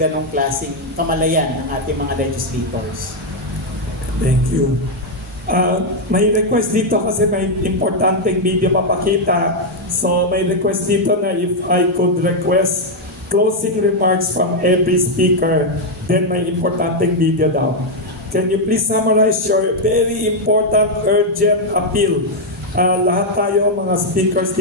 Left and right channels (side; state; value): both; normal; correlation 0.00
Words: klaseng kamalayan ng ating mga legislators. Thank you. May request dito kasi may importanteng video papakita. So may request dito na if I could request closing remarks from every speaker, then may importanteng video daw. Can you please summarize your very important, urgent appeal? Lahat tayo mga speakers